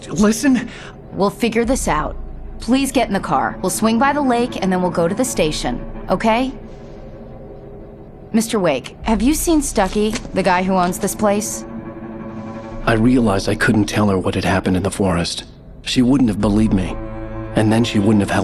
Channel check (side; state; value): both; identical; correlation 1.00